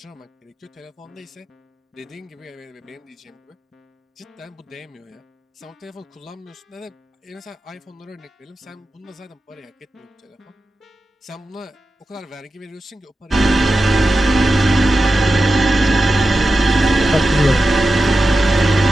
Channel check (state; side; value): normal; both; correlation 0.92